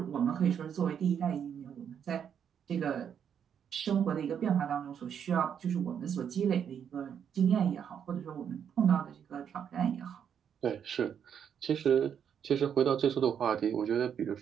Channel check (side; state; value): left; quieter; 8.2 dB